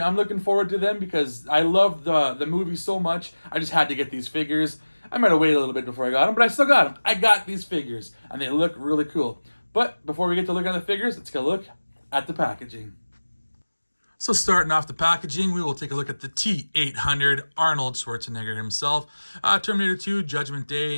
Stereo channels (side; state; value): both; inverted; correlation -1.00